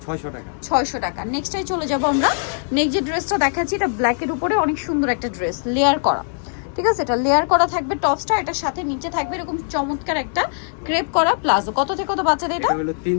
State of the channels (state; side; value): silent; right; digital silence